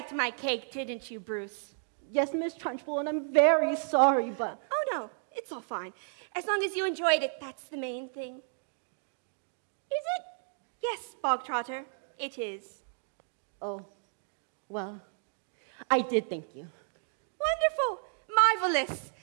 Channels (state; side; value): silent; left; digital silence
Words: my cake, didn't you, Bruce? Yes, Miss Trunchbull, and I'm very sorry, but... Oh, no, it's all fine. As long as you enjoyed it, that's the main thing. Is it? Yes, Bogtrotter, it is. Oh, well, I did thank you. Wonderful, marvelous.